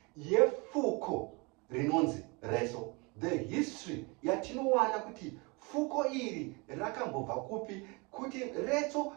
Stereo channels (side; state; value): left; quieter; 28.4 dB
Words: yefuko rinonzi retso. The history yatinowana kuti fuko iri rakambobva kupi, kuti retso